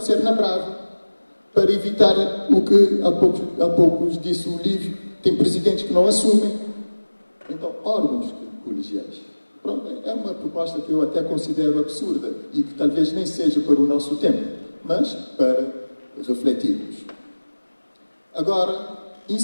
na Brava, para evitar o que há poucos disse o Lívio, tem presidentes que não assumem. Então, órgãos colegiais. Pronto, é uma proposta que eu até considero absurda e que talvez nem seja para o nosso tempo, mas para refletirmos. Agora,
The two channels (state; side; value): inverted; both; correlation -1.00